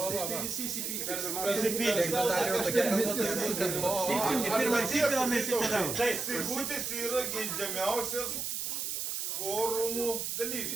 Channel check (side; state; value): right; noise; hiss, 3 dB below the sound